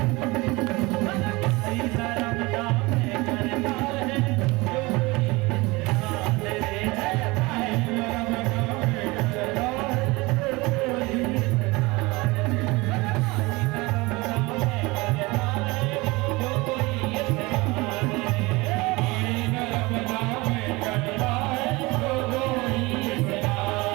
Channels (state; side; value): quieter; left; 23.3 dB